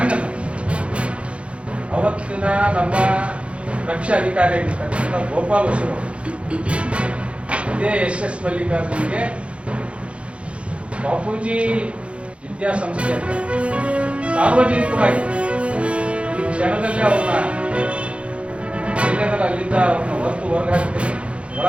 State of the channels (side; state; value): left; late; 0.060 ms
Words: ಅಲ್ಲ. ಅವತ್ತಿನ ನಮ್ಮ ರಕ್ಷಾ ಅಧಿಕಾರಿ ಆಗಿರ್ತಕ್ಕಂಥ ಗೋಪಾಲ್ ಹೊಸರು ಇದೇ SS ಮಲ್ಲಿಕಾರ್ಜುನ್ಗೆ ಬಾಪೂಜಿ ವಿದ್ಯಾಸಂಸ್ಥೆ ಅಂತ ಸಾರ್ವಜನಿಕವಾಗಿ ಈ ಕ್ಷಣದಲ್ಲೇ ಅವ್ರನ್ನ ಎಲ್ಲೆದರ ಅಲ್ಲಿಂದ ಅವ್ರನ್ನ ಹೊರಗೆ ಹಾಕ್ತೀನಿ,